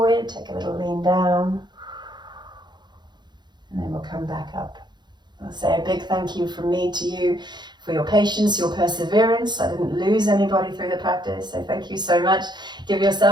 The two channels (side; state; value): left; late; 0.21 ms